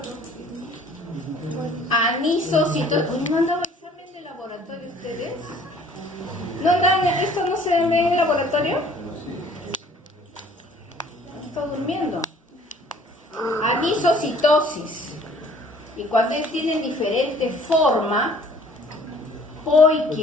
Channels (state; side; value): normal; both; correlation 0.54